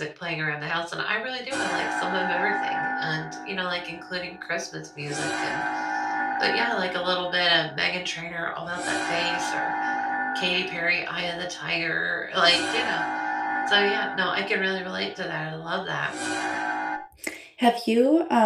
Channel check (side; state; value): both; identical; correlation 1.00